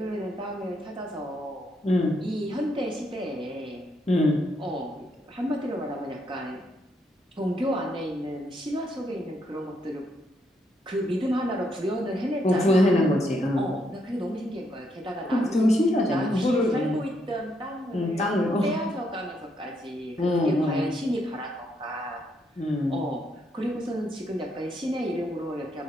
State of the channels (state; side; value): normal; both; correlation 0.76